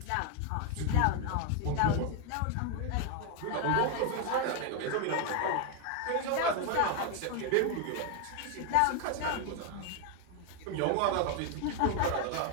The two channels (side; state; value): both; different; correlation 0.01